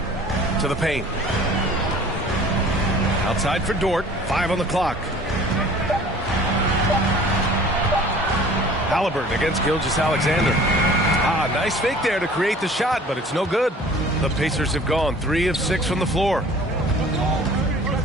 To the paint. Outside for Dort. 5 on the clock. Halliburton against Gilgeous-Alexander. Nice fake there to create the shot, but it's no good. The Pacers have gone 3 of 6 from the floor.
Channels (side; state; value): both; normal; correlation 0.48